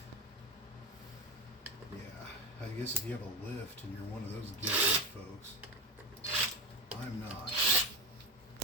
Yeah, I guess if you have a lift and you're one of those gifted folks, I'm not. So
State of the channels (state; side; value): normal; both; correlation 0.19